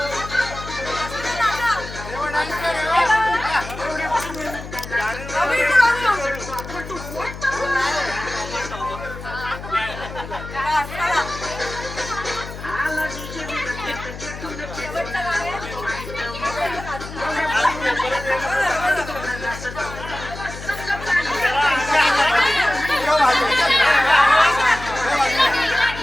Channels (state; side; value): noise; left; hum, 11 dB below the sound